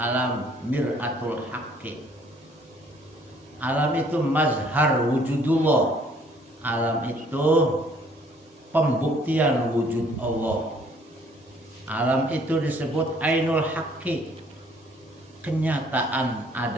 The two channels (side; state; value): both; normal; correlation 0.61